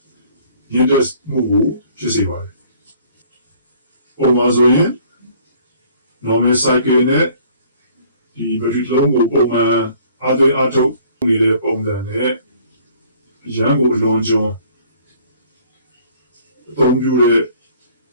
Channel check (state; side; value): inverted; both; correlation -0.57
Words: ညှိတဲ့မှုကိုဖြစ်စေပါတယ်။ပုံမှန်ဆိုရင် normal cycle နဲ့ဒီဘက်ထရီလုံးကိုပုံမှန်အားသွင်းအားထုတ်နေတဲ့ပုံစံနဲ့ရန်ကိုအလွန်ကျွံအသုံးပြုတဲ့